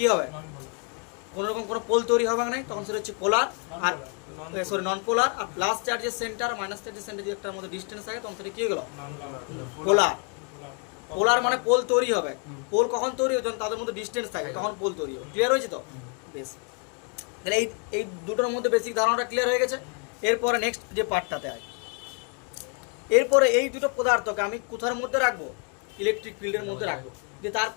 হবে, কোনো রকম কোনো পোল তৈরি হবে না, তখন সেটা হচ্ছে পোলার, আর সরি নন পোলার। আর প্লাস চার্জের সেন্টার মাইনাস চার্জের সেন্টার যদি একটার মধ্যে ডিস্টেন্স থাকে তখন সেটা কি হয়ে গেল, পোলার। পোলার মানে পোল তৈরি হবে, পোল কখন তৈরি হবে, যখন তাদের মধ্যে ডিস্টেন্স থাকে তখন পোল তৈরি হবে। ক্লিয়ার হয়েছে তো? বেশ, তাহলে এই দুটোর মধ্যে বেসিক ধারণাটা ক্লিয়ার হয়ে গেছে। এরপরে নেক্সট যে পার্টটাতে হয়, এরপরে এই দুটো পদার্থকে আমি কোথার মধ্যে রাখবো, ইলেকট্রিক ফিল্ডের মধ্যে রাখবো, যে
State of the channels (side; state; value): right; quieter; 37.8 dB